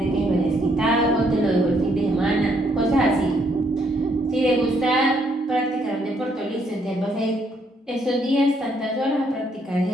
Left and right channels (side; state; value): both; normal; correlation 0.71